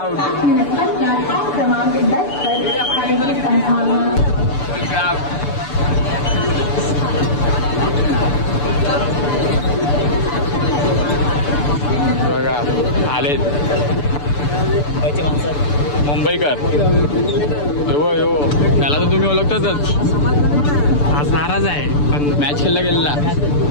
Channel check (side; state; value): right; late; 6.9 ms